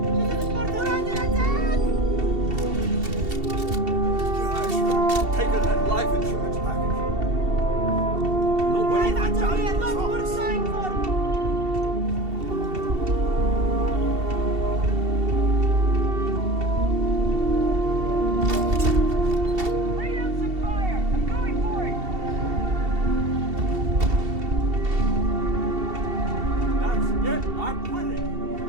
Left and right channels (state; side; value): late; left; 2.7 ms